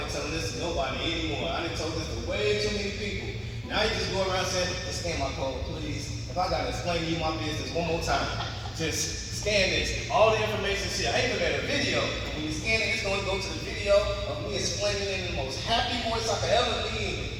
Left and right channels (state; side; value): identical; both; correlation 1.00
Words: telling this to nobody anymore. I done told this to way too many people. Now you just go around saying, just scan my code, please. If I gotta explain to you my business one more time, just scan this. All the information shit. I even made a video. When you scan it, it's gonna go to the video of me explaining it in the most happy voice I could ever be in.